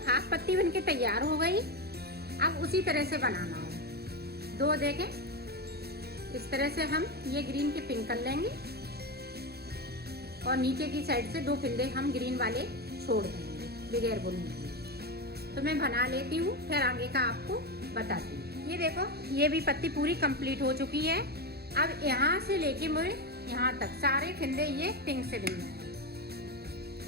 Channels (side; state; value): left; late; 0.46 ms